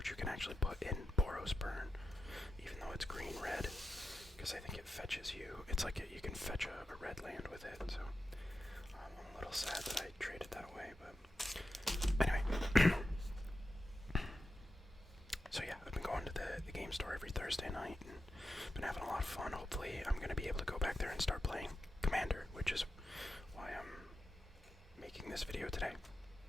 you can actually put in Boros Burn, even though it's green-red, because I think it fetches you. It's like you can fetch a red land with it, so I'm a little sad that I traded that away, but anyway. So yeah, I've been going to the game store every Thursday night and been having a lot of fun. Hopefully I'm going to be able to go back there and start playing Commander, which is why I'm making this video today.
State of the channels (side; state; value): both; normal; correlation 0.90